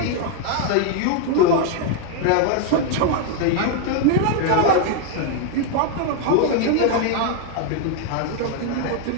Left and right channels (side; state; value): both; different; correlation 0.01